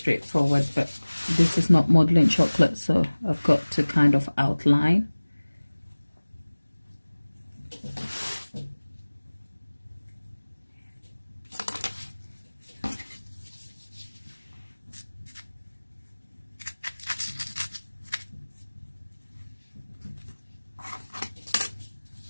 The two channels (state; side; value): inverted; both; correlation -1.00